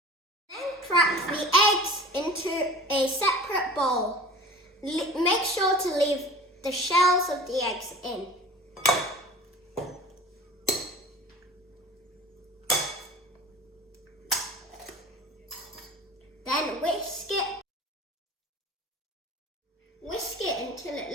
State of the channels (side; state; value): both; normal; correlation 0.41